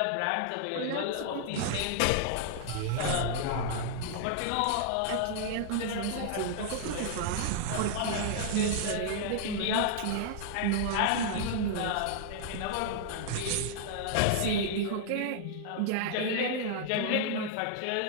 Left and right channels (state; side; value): different; both; correlation -0.01